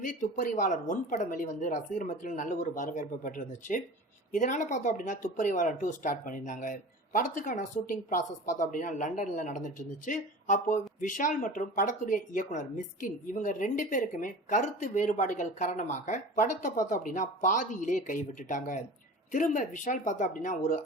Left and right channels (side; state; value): both; normal; correlation 0.37